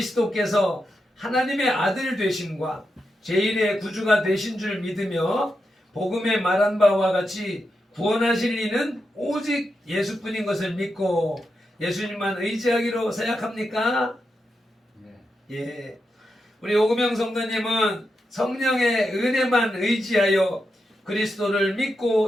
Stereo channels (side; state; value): both; normal; correlation 0.87